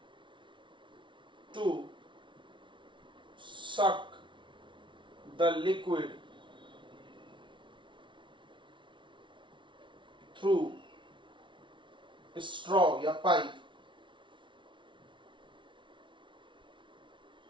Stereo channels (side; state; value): left; late; 0.24 ms